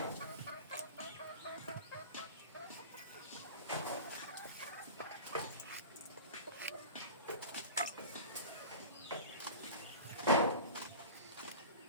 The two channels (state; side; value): inverted; both; correlation -0.34